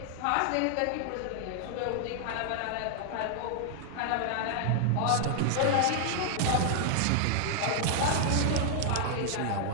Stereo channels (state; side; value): different; both; correlation 0.00